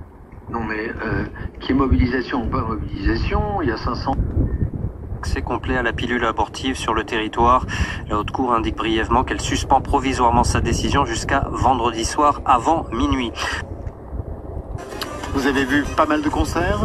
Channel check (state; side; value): identical; both; correlation 1.00